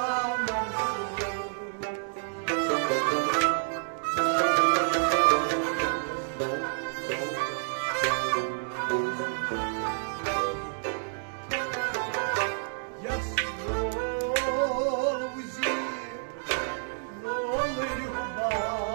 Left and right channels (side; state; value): left; silent; digital silence